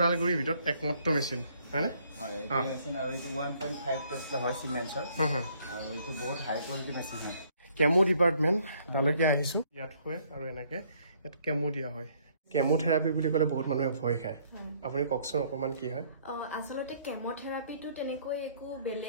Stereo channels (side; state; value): both; inverted; correlation -0.64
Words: ভিতৰত একমাত্ৰ মেচিন হয়নে হয় এই মেচিন আৰু এইটো 1.5 টেসলা হয় সিমেন্সৰ আৰু এইটো বহুত হাই কোৱালিটি মেচিন হয় কেমো ডিপাৰ্টমেণ্ট তালৈকে আহিছোঁ ইয়াত হয় আৰু এনেকৈ ইয়াত কেমো দিয়া হয় কেমোথেৰাপি বুলি ক'লে বহুত মানুহে ভয় খায় আপুনি কওকচোন অকমান কি হয় আসলতে কেমোথেৰাপিটো তেনেকৈ একো